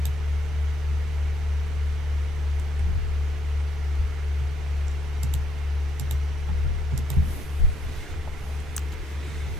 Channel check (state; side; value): normal; both; correlation 0.72